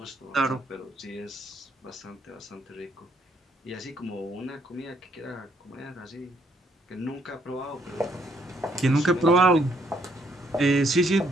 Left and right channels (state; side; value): normal; both; correlation 0.70